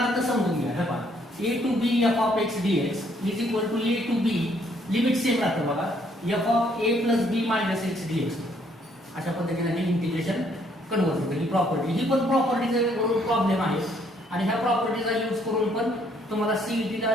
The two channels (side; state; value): both; normal; correlation 0.67